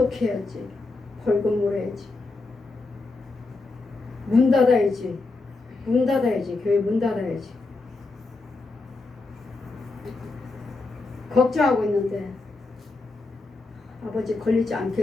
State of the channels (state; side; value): quieter; right; 3.5 dB